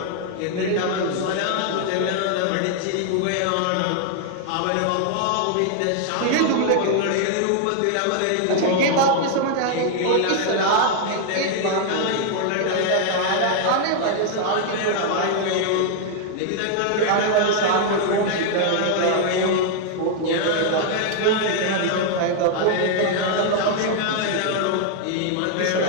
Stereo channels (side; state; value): both; different; correlation 0.00